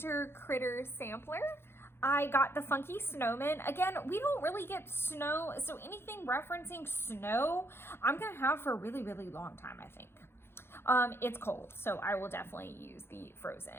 Critter Sampler. I got the Funky Snowman. Again, we don't really get snow. So anything referencing snow, I'm going to have for a really, really long time, I think. It's cold, so I will definitely use the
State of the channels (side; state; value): right; late; 0.11 ms